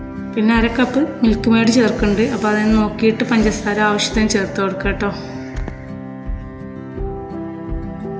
പിന്നെ 1/2 കപ്പ് മിൽക്ക് മെയ്ഡ് ചേർക്കുന്നുണ്ട്. അപ്പോൾ അതിന് നോക്കിയിട്ട് പഞ്ചസാര ആവശ്യത്തിന് ചേർത്ത് കൊടുക്കുക കേട്ടോ.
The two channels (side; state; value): both; identical; correlation 1.00